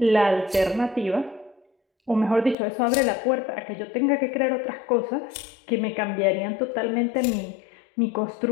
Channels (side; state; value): right; drops out; at 2.6 s